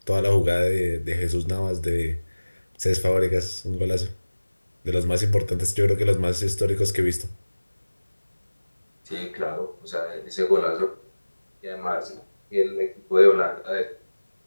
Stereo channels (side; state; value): both; inverted; correlation -1.00